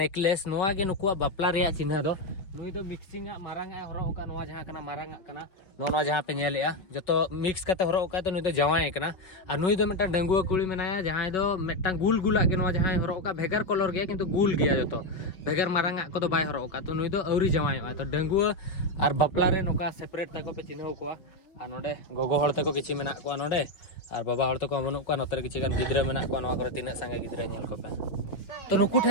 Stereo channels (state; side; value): late; right; 5.4 ms